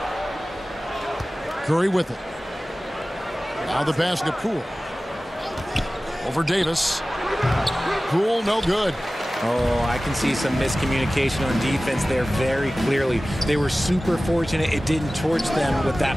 Curry with it. Now the pass to Poole. Over Davis. Poole no good. Oh, I can see some miscommunication on defense there very clearly. They were super fortunate it didn't torch them with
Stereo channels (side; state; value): both; normal; correlation 0.97